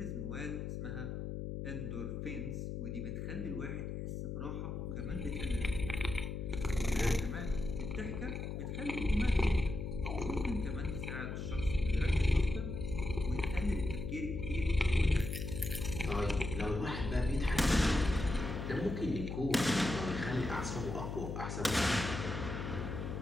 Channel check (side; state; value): left; noise; hum, 4 dB below the sound